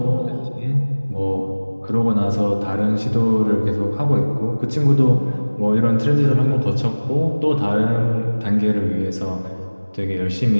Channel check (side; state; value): both; inverted; correlation -1.00